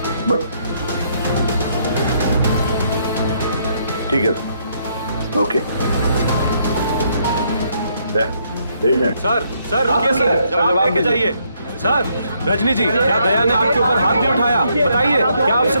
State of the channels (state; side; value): inverted; both; correlation -0.72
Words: ठीक है, ओके। सर रुकिए सर, जवाब देके जाइए। सर, रजनी जी, क्या दया ने आपके ऊपर हाथ भी उठाया? बताइए, क्या आपसे